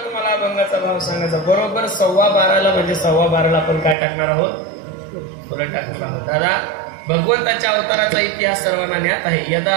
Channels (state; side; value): drops out; left; at 4.0 s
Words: सांगायचा बरोबर 12:15 म्हणजे 12:15 आपण काय टाकणार आहोत? पुढे टाकणार आहोत. दादा भगवंताच्या अवताराचा इतिहास सर्वांना ज्ञात आहे. यदा